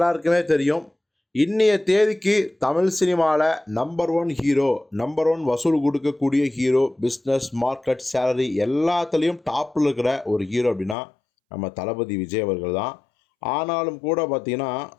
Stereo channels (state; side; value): drops out; right; at 11.0 s